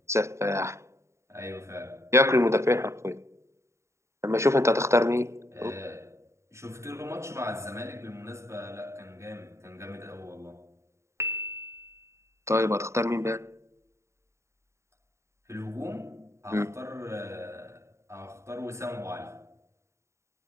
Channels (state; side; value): late; left; 0.14 ms